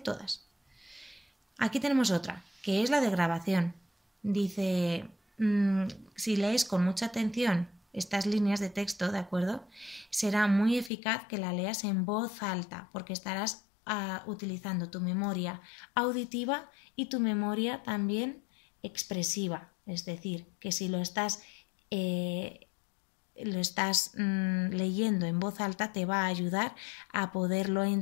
Aquí tenemos otra, que es la de grabación. Dice, si lees con mucha atención estas líneas de texto, ¿de acuerdo? Será muy eficaz que la leas en voz alta porque estarás utilizando tu memoria auditiva y tu memoria también expresiva. Es decir, que si lo estás leyendo en voz alta te va a ayudar a poderlo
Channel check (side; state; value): right; drops out; at 10.9 s